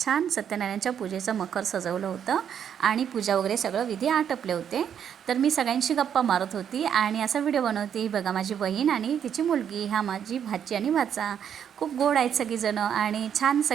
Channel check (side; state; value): left; quieter; 8.6 dB